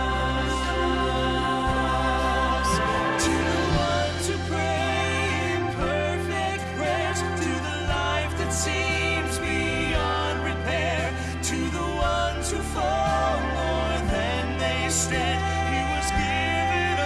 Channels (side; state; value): both; identical; correlation 1.00